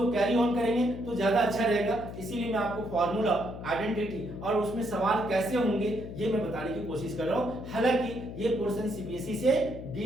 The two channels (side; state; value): left; noise; hum, 10 dB below the sound